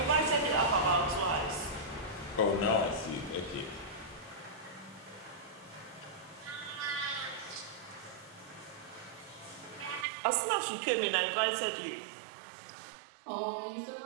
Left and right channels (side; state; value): left; drops out; at 10.1 s